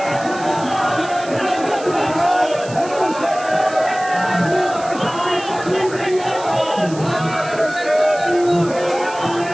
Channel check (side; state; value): right; noise; hiss, 17 dB below the sound